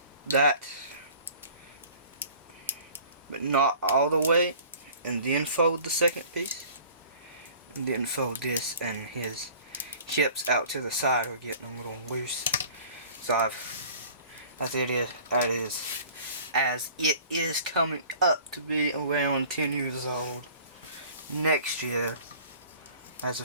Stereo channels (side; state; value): both; inverted; correlation -0.48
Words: that, but not all the way, and then fold the second piece, and then fold this, and his hips out to the side are getting a little loose. So as it is coming up to be around 10 years old next year, as